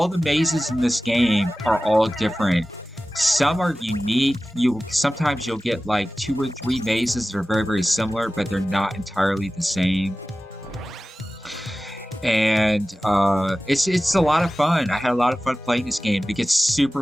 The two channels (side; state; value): both; normal; correlation 0.96